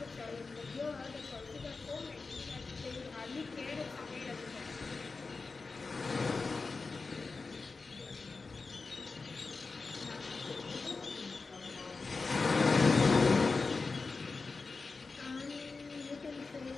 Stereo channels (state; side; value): quieter; right; 4.1 dB